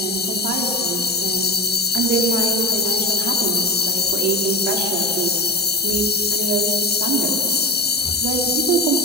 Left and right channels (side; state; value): both; normal; correlation 0.28